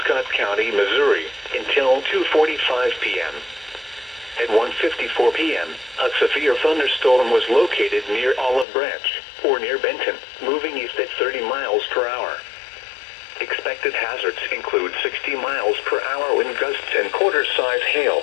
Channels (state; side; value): drops out; right; at 8.7 s